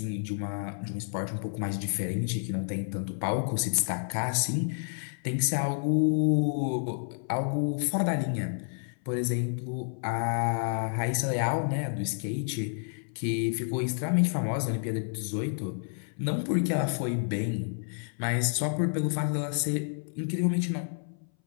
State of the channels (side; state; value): right; silent; 58 dB below the other